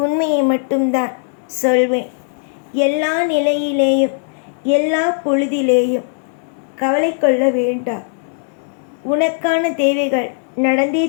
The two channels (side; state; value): right; silent; 67 dB below the other